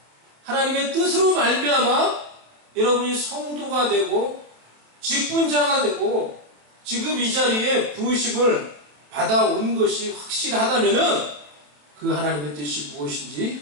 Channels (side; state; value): left; late; 27 ms